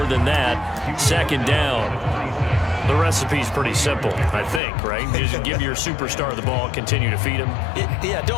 than that. 2nd down. The recipe's pretty simple, I think, right? Just give your superstar the ball, continue to feed him. Yeah,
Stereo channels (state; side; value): drops out; right; at 4.6 s